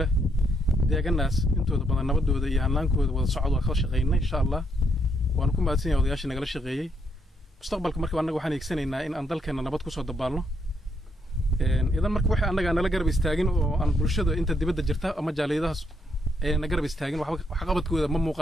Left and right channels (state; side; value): normal; both; correlation 0.75